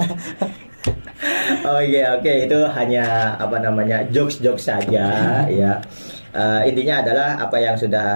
Oke, itu hanya jokes saja ya. Intinya adalah apa yang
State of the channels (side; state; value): both; inverted; correlation -1.00